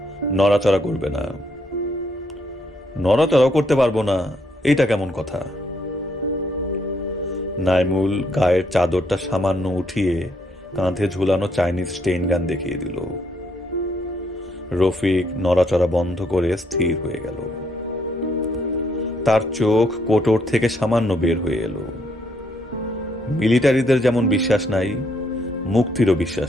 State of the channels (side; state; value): both; normal; correlation 0.72